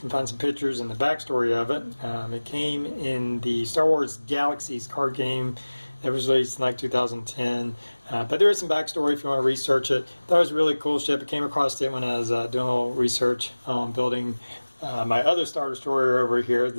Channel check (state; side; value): inverted; both; correlation -1.00